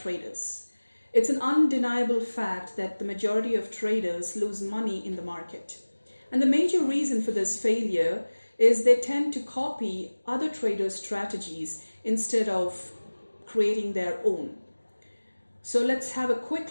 It's an undeniable fact that the majority of traders lose money in the market. And the major reason for this failure is they tend to copy other traders' strategies instead of creating their own. So let's have a quick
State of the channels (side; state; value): both; inverted; correlation -1.00